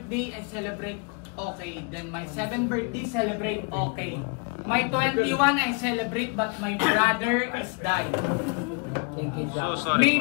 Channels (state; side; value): quieter; right; 34.0 dB